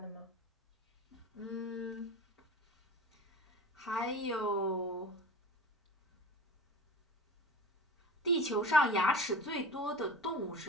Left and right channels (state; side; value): normal; both; correlation 0.35